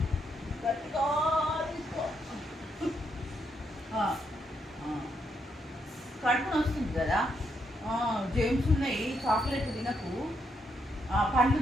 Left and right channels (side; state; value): both; normal; correlation 0.78